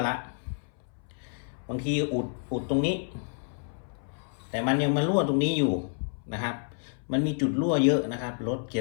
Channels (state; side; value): silent; right; 58 dB below the other